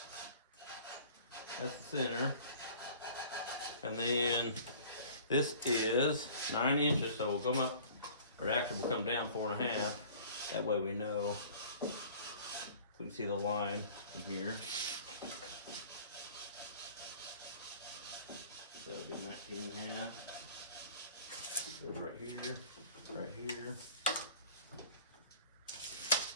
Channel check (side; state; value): both; inverted; correlation -0.47